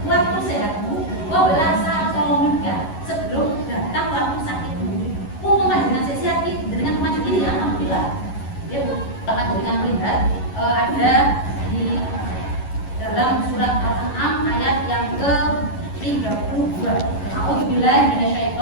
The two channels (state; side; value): late; right; 11 ms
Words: waktu sehatmu qabla saqamika, sebelum datang waktu sakitmu. Mumpung dengan sehat dengan maju ini ya, alhamdulillah. Ya Bu, akan dengan melihat ada di dalam surat Al-An'am ayat yang ke-32. A'udzubillahi